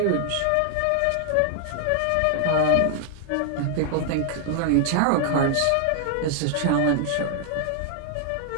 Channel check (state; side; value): different; both; correlation 0.00